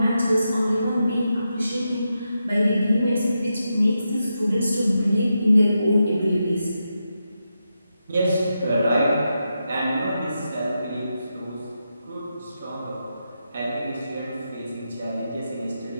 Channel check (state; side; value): inverted; both; correlation -0.87